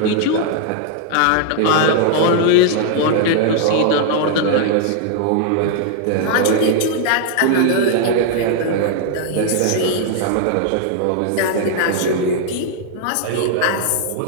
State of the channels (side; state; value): both; different; correlation 0.00